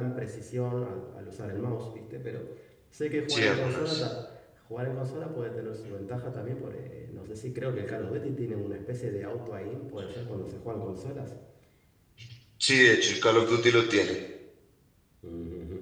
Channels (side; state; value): both; identical; correlation 1.00